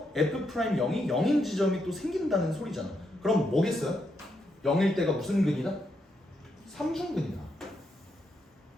F'영이 0인 지점이 또 생긴다는 소리잖아. 그럼 뭐겠어요? 0일 때가 무슨 근이다? 삼중근이다.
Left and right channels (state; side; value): normal; both; correlation 0.81